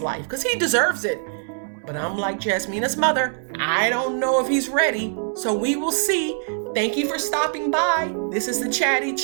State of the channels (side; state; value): left; silent; 61 dB below the other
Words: because he deserves it. But I'm like Jasmina's mother, I don't know if he's ready. So we will see. Thank you for stopping by. This is the Chatty